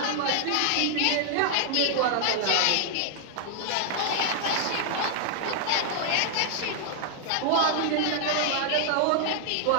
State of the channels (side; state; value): both; different; correlation -0.01